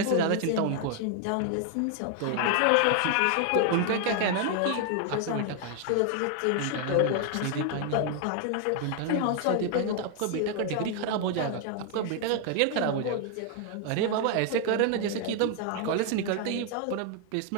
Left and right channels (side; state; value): both; different; correlation 0.00